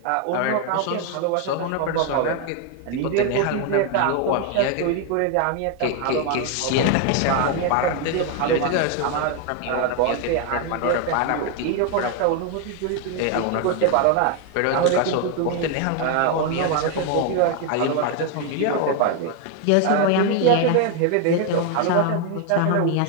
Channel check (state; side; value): different; both; correlation 0.01